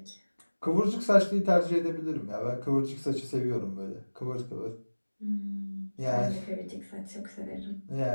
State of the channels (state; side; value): inverted; both; correlation -1.00